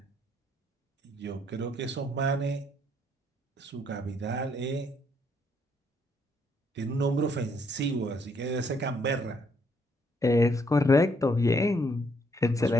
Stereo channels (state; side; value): normal; both; correlation 0.70